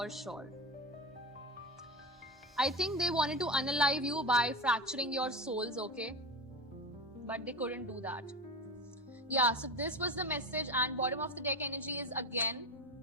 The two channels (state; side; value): normal; both; correlation 0.23